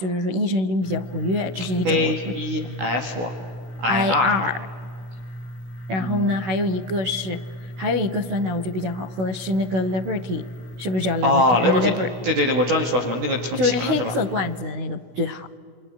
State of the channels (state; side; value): late; left; 16 ms